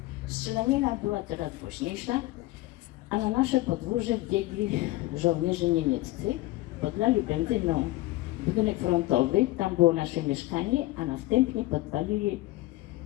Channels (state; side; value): quieter; right; 18.5 dB